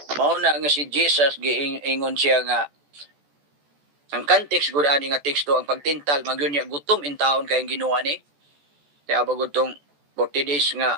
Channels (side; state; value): left; late; 14 ms